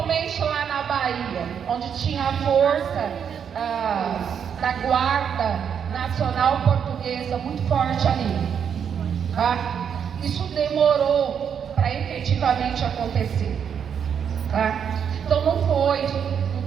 lá na Bahia, onde tinha a força da Guarda Nacional Portuguesa muito forte ali. Tá? Isso demorou para efetivamente acontecer. Tá? Então não foi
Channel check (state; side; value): quieter; left; 7.7 dB